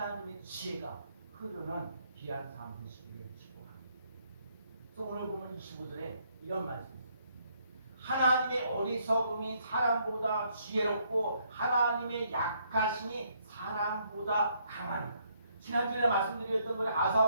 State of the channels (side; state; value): both; inverted; correlation -0.71